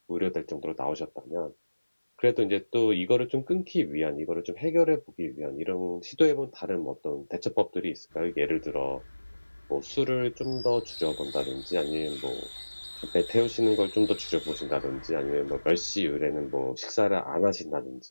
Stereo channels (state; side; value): inverted; both; correlation -1.00